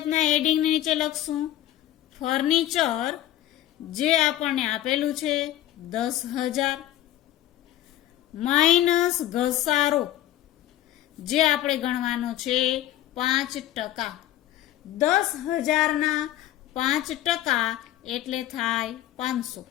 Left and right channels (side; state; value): right; quieter; 13.2 dB